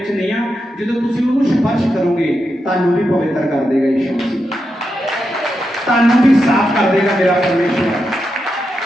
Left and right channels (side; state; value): both; normal; correlation 0.86